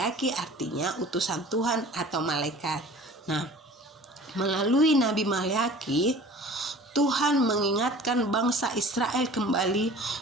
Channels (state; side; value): normal; both; correlation 0.45